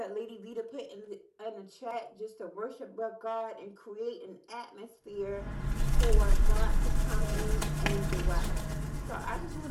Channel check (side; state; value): both; identical; correlation 1.00